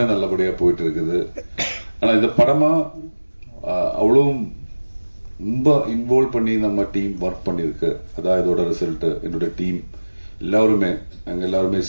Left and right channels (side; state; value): both; inverted; correlation -1.00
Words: நல்லபடியா போயிட்டு இருக்குது. ஆனா இந்த படமா அவ்வளவு ரொம்ப இன்வால்வ் பண்ணி நம்ம டீம் ஒர்க் பண்ணிருக்கு. அதான் இதோட ரிசல்ட். என்னோட டீம் எல்லாருமே நாங்க எல்லாருமே